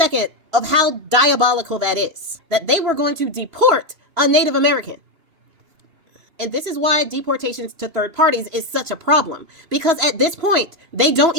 of how diabolical that is, that they were going to deport a Native American. And this is why deportations to third parties is such a problem. Because at this point, they don't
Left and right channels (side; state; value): left; late; 3.0 ms